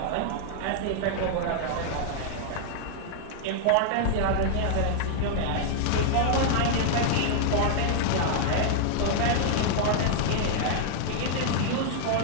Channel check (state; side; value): different; both; correlation -0.01